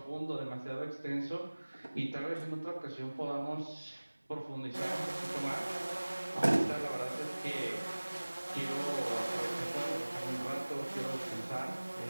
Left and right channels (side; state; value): both; inverted; correlation -1.00